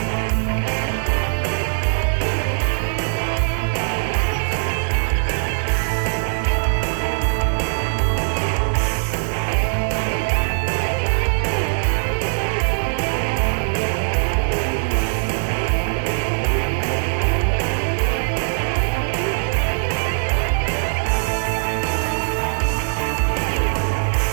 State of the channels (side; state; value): left; silent; digital silence